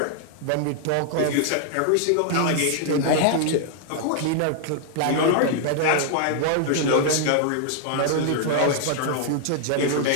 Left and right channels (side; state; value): both; different; correlation 0.00